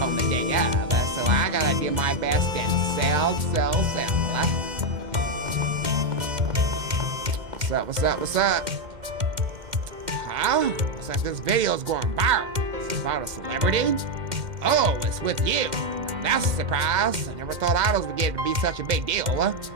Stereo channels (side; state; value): left; late; 2.1 ms